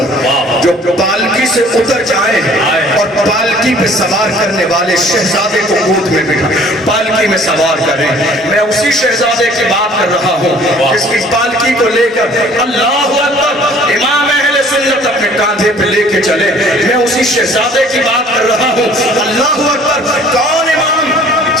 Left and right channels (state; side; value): normal; both; correlation 0.53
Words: جو پالکی سے اتر جائے اور پالکی پہ سوار کرنے والے شہزادے کو گود میں بٹھا پالکی میں سوار کریں. میں اسی شہزادے کی بات کر رہا ہوں جس کی پالکی کو لے کر اللہ اکبر امام اہل سنت اپنے کاندھے پہ لے کے چلے. میں اسی شہزادے کی بات کر رہا ہوں. اللہ اکبر. کون امام؟